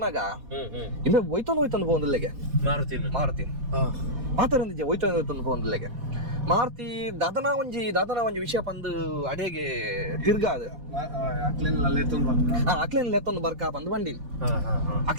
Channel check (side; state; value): left; late; 4.2 ms